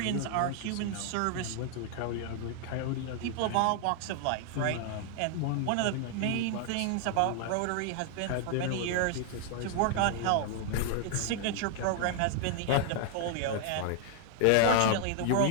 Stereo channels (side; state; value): both; different; correlation 0.00